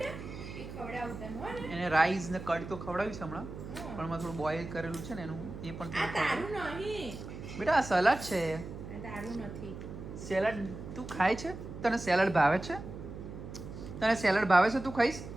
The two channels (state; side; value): noise; right; hum, 10 dB below the sound